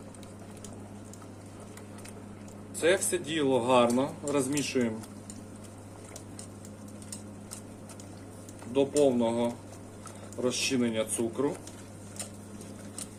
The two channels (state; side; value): identical; both; correlation 1.00